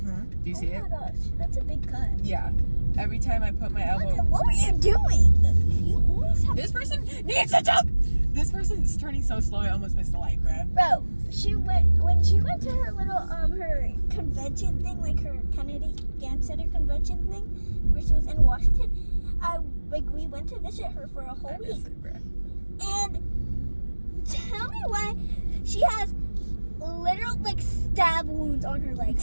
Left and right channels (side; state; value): both; inverted; correlation -1.00